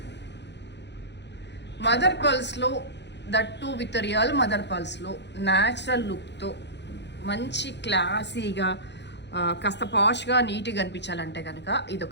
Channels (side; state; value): right; late; 0.51 ms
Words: Mother పర్ల్స్లో, దట్టు విత్ రియల్ మదర్ పర్ల్స్లో న్యాచురల్ లుక్తో మంచి క్లాసీగా కాస్త పాష్గా నీట్గా అనిపించాలంటే కనుక ఇది